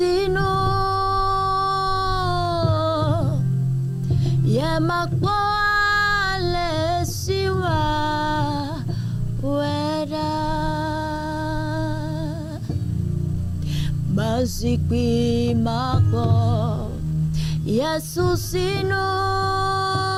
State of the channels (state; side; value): identical; both; correlation 1.00